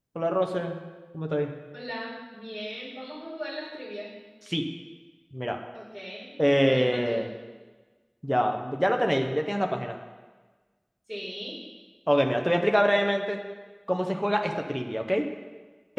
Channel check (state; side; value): identical; both; correlation 1.00